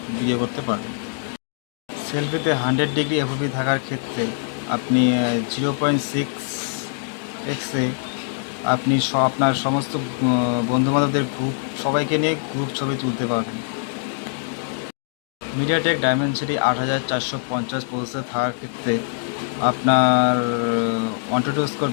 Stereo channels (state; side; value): silent; right; digital silence